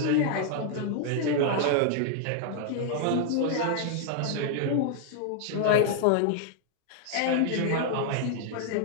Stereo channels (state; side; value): different; both; correlation 0.00